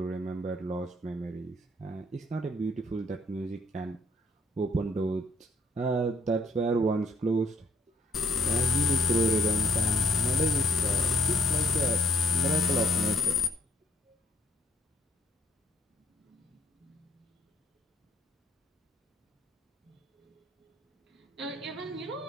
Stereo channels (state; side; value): normal; both; correlation 0.66